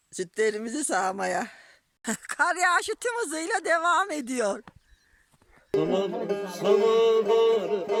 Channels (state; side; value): identical; both; correlation 1.00